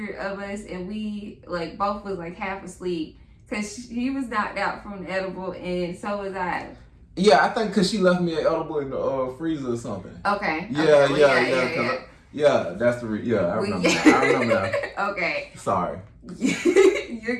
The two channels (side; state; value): both; identical; correlation 1.00